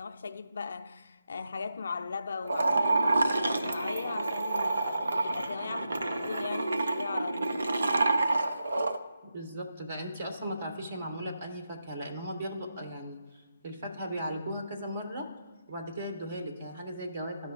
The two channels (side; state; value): both; inverted; correlation -0.86